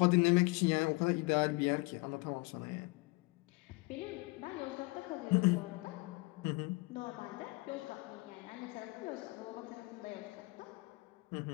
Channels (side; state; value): right; quieter; 26.3 dB